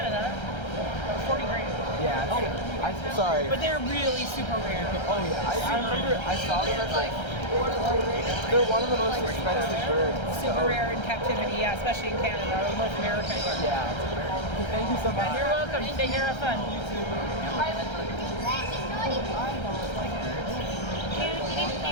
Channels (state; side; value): late; right; 1.3 ms